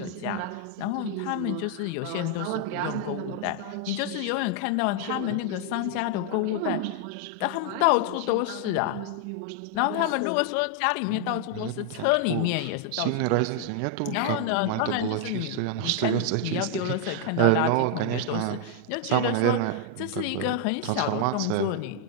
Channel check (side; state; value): both; different; correlation 0.00